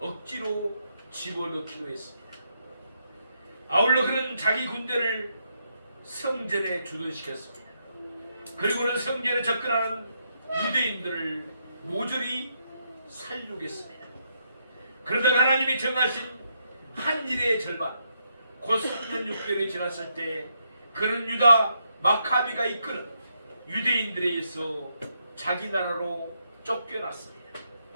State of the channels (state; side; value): inverted; both; correlation -0.78